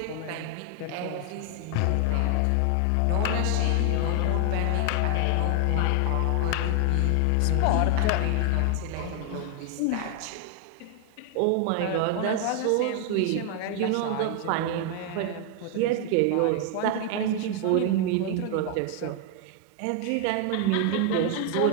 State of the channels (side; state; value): both; different; correlation 0.00